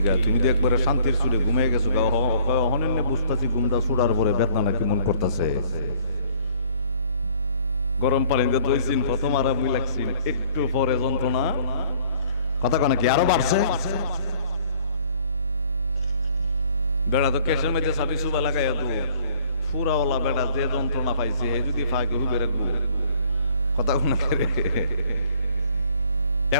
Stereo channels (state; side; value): inverted; both; correlation -0.56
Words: তুমি তো একবারে শান্তির সুরে ঘুমিয়ে গেছো। অহনে বুঝতেছি ঘুমটা সুড়ার পরে বেদনা কেমন করতেছে। গরম পানিতে ধুইছিন, প্রথম আরামই লাগছিল, একটু পরে যন্ত্রণা কথা কয় নাকি আরো বাড়ছে। বেড়া তো কেশের মধ্যে সাবি সুবা লাগাইয়া তো ফুরাওয়ালা বেড়া যে যন্ত্রণা পাইছে হে যদি ফাঁকে হুবে রাখবো কথা কোন